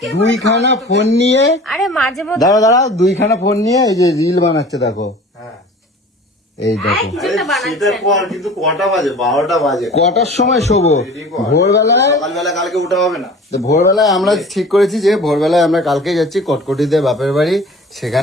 দুইখানা ফোন নিয়ে, আরে মাঝে মধ্যে দাঁড়া দুইখানা ফোন নিয়ে এই যে রিল বানাচ্ছে দেখো। এই দেখো কিন্তু কটা বাজে? 12টা বাজে। কটার সময় শোবো? ভোরবেলায়। সকালবেলা কালকে উঠা হবে না? ভোরবেলায় আমরা ঠিক করেছি যে ভোরবেলায় আমরা কালকে যাচ্ছি কটকটিতে বাপের বাড়ি,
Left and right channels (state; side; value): normal; both; correlation 0.43